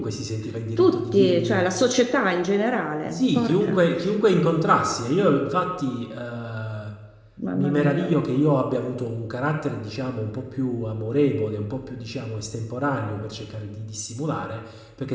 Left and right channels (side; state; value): both; identical; correlation 1.00